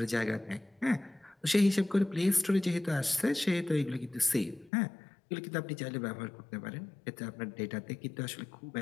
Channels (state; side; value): drops out; right; at 4.7 s